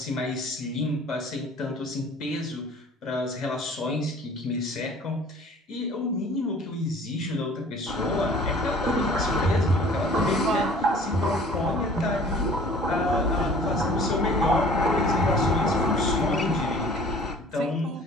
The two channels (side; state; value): both; normal; correlation 0.49